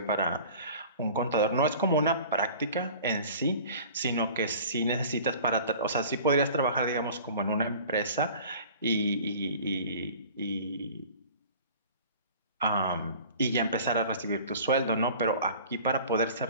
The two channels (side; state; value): both; inverted; correlation -0.44